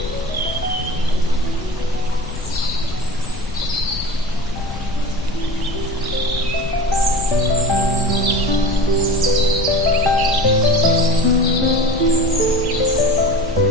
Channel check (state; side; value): noise; left; rumble, 10 dB below the sound